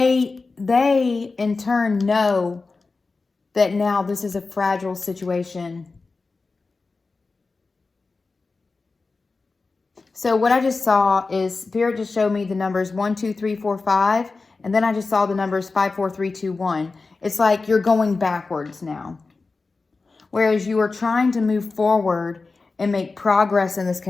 in turn know that now this is a fragile situation. So what I just saw is Spirit just showed me the numbers 1, 2, 3, 4, 5. And then I just saw the numbers 5, 4, 3, 2, 1. It's like you're going backwards now. Whereas you were trying to move forward and make progress in this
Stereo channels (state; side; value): quieter; right; 3.9 dB